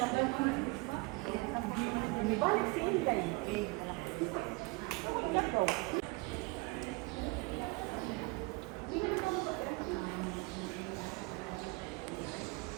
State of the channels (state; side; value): quieter; left; 26.0 dB